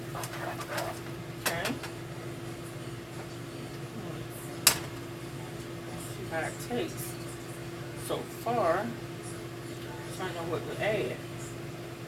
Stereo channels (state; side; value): identical; both; correlation 1.00